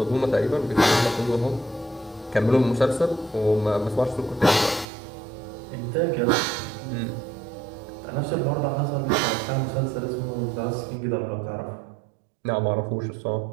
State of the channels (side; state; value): left; drops out; at 4.9 s